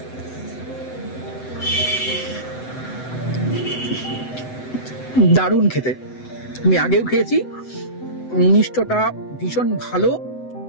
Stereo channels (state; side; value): late; right; 7.9 ms